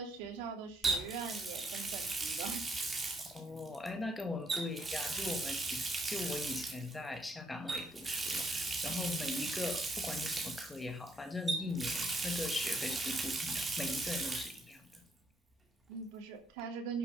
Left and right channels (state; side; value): normal; both; correlation 0.73